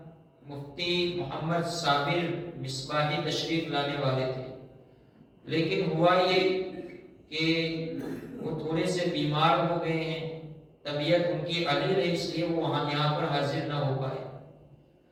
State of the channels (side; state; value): both; identical; correlation 1.00